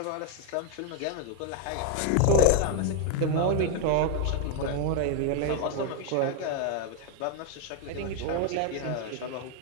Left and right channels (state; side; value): different; both; correlation 0.01